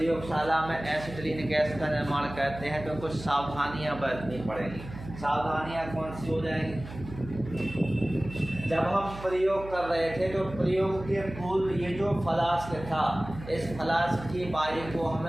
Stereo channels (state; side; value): noise; right; hum, 13 dB below the sound